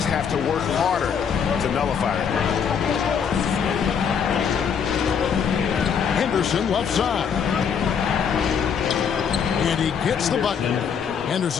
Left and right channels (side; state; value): right; quieter; 7.1 dB